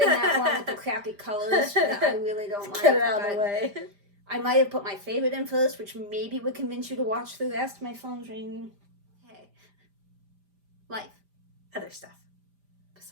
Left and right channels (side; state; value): left; late; 5.0 ms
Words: that one with the crappy colors that I really don't like. Get it out of the way. I might have put my favorite in first, which maybe would convince you to watch the rest. My phone's ringing. Hey. Life. Other stuff.